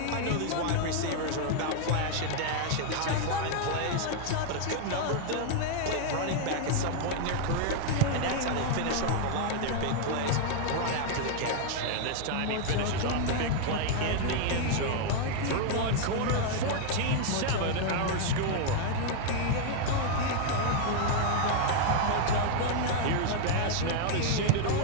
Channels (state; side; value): different; both; correlation 0.00